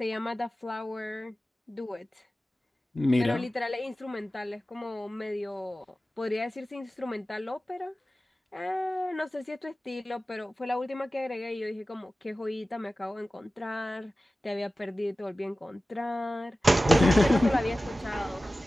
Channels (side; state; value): both; normal; correlation 0.96